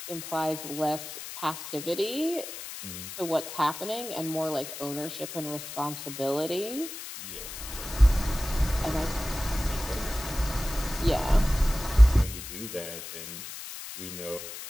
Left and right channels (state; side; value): noise; left; hiss, 10 dB below the sound